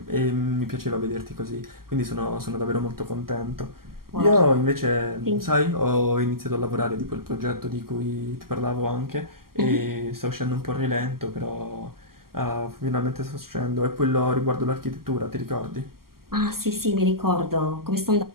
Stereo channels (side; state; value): left; late; 0.92 ms